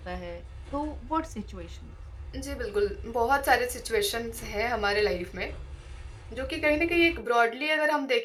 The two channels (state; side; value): identical; both; correlation 1.00